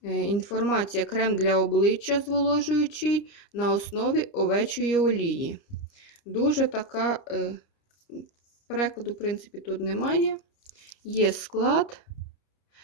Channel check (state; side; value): late; right; 29 ms